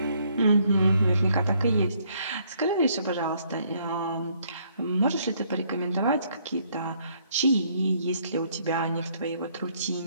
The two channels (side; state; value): both; inverted; correlation -0.68